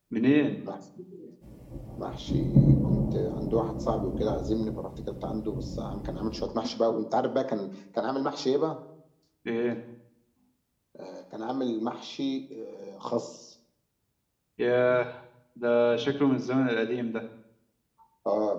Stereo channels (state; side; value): identical; both; correlation 1.00